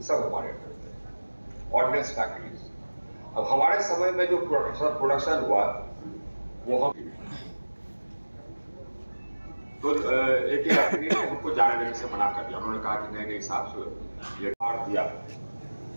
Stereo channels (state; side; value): inverted; both; correlation -1.00